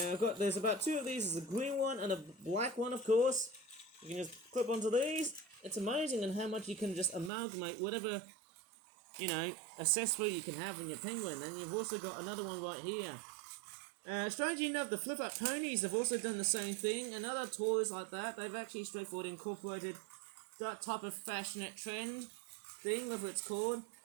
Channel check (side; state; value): left; drops out; at 7.3 s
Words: about 2 of these. There's a green one and a black one, of course. You can just clip onto these. It's amazing in how much you can just amalgamate whatever, accessory you can have in your penguin. And you've also got another one right here. Strangely enough, the flip-up ponies have also done the same thing. And other toys like that, they've actually straightforward incorporated that type of fashionette trend thing, whatever it's called.